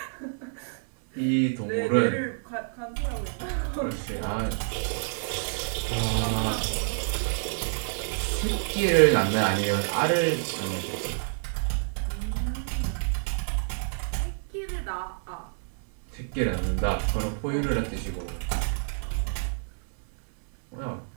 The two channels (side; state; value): left; silent; digital silence